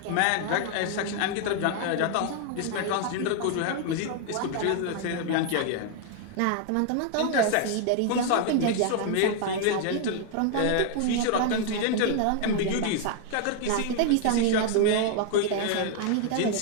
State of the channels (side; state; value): both; different; correlation 0.00